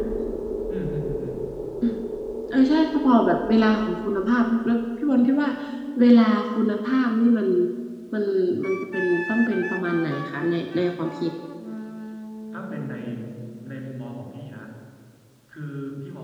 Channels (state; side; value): identical; both; correlation 1.00